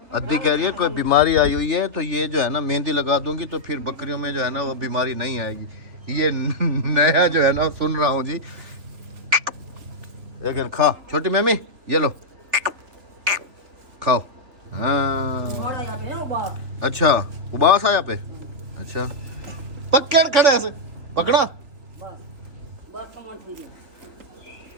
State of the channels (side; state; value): left; late; 3.2 ms